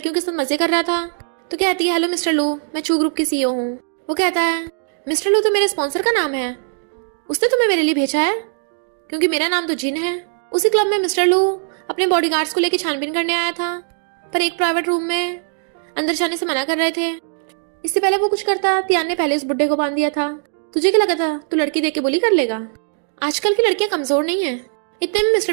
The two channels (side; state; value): left; silent; digital silence